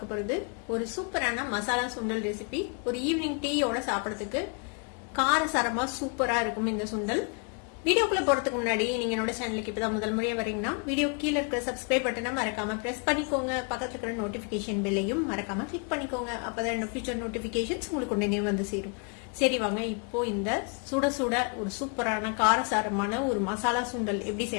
போறது ஒரு சூப்பரான மசாலா சுண்டல் ரெசிபி. ஒரு ஈவினிங் டீயோட சாப்பிடறதுக்கு காரசாரமா சூப்பரா இருக்கும் இந்த சுண்டல். வீடியோக்குள்ள போறதுக்கு முன்னாடி நீங்க என்னோட சேனலுக்கு இப்பதான் முதல் முறையா வரீங்கன்னா வீடியோ கீழே இருக்கிற சப்ஸ்கிரைப் பட்டனை மறக்காம பிரஸ் பண்ணிக்கோங்க. பக்கத்துல இருக்கிற நோட்டிபிகேஷன் பெல்லையும் மறக்காம கிளிக் பண்ணிக்கோங்க. அப்பதான் என்னோட ஃபியூச்சர் நோட்டிபிகேஷன்ஸ் உங்களுக்கு உடனே வந்து சேரும். சரி வாங்க, இப்போ இந்த சுட சுட ஒரு சூப்பரான காரசாரமான ஒரு மசாலா சுண்டல் எப்படி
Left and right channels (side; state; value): right; quieter; 37.3 dB